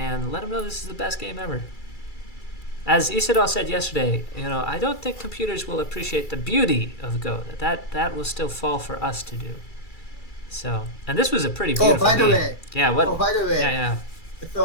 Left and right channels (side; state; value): right; late; 2.3 ms